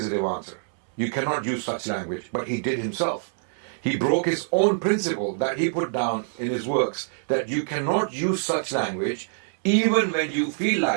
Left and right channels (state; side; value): silent; left; 62 dB below the other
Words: answer. You cannot use such language, but he did himself. He broke his own principle that he put down in his works, that you cannot use such language even when you feel